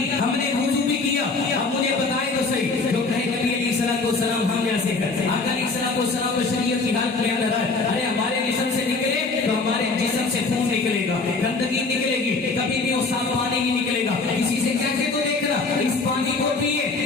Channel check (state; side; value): quieter; right; 3.9 dB